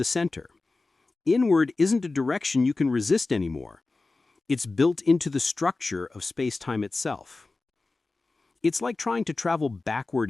center. Inward isn't a direction you can resist anymore. It's built into the structure of space-time itself. It's like trying to travel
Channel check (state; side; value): quieter; right; 3.5 dB